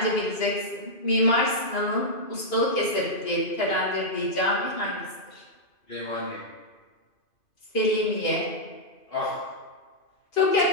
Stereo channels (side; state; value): right; late; 2.5 ms